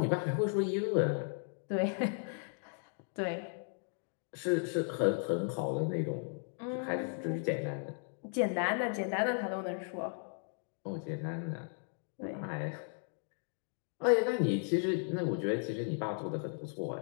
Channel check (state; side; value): silent; right; 54 dB below the other